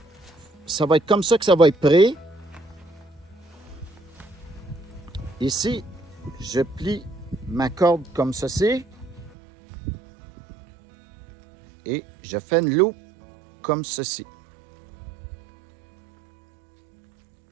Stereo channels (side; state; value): left; drops out; at 9.3 s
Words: ça va être comme ça que ça va être prêt. Ici, je plie ma corde comme ceci. Et je fais une loupe comme ceci.